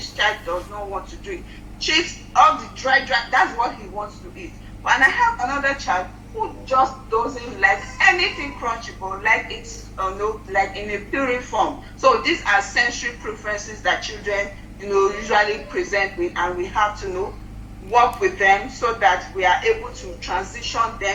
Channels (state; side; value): identical; both; correlation 1.00